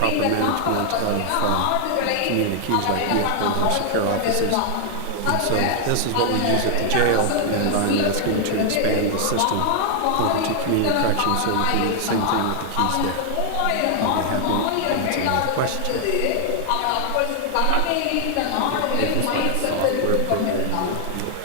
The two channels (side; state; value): both; different; correlation 0.00